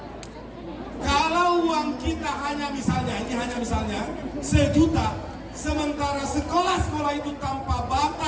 Kalau uang kita hanya misalnya, ini hanya misalnya 1 juta, sementara sekolah-sekolah itu tanpa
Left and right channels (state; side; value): identical; both; correlation 1.00